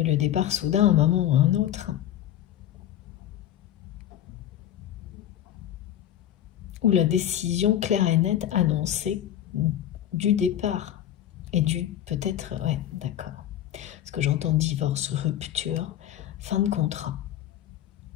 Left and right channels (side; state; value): right; quieter; 11.6 dB